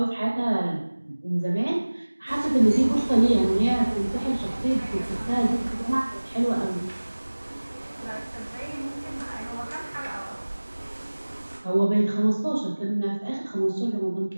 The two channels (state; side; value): inverted; both; correlation -1.00